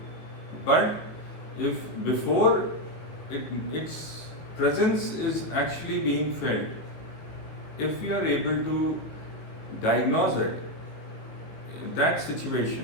But if before its presence is actually being felt, if we are able to diagnose it, that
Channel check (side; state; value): right; late; 19 ms